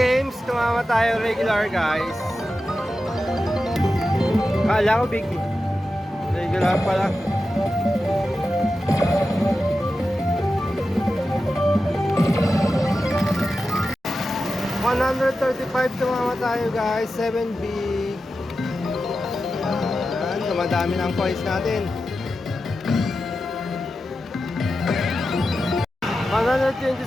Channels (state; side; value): normal; both; correlation 0.92